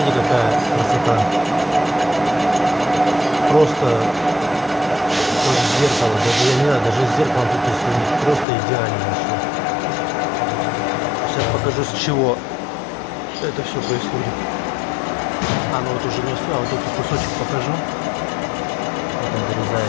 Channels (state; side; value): drops out; right; at 8.5 s